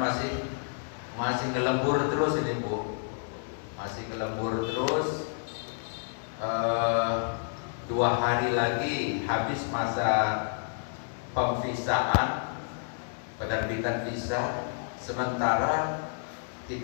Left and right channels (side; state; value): right; silent; 58 dB below the other